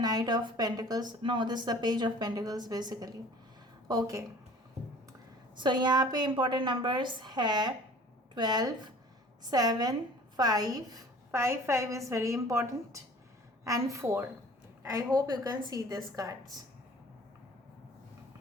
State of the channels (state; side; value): normal; both; correlation 0.47